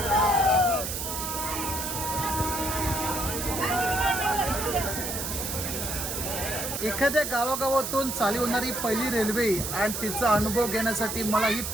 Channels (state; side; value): noise; right; hiss, 4 dB below the sound